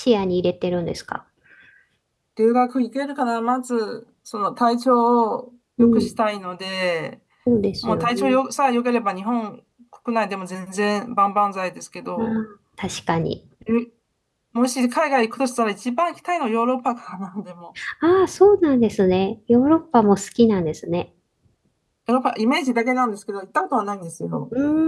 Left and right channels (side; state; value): both; identical; correlation 1.00